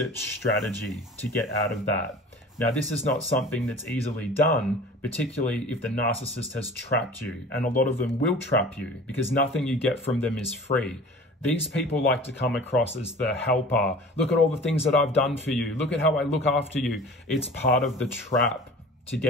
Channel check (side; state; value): both; normal; correlation 0.42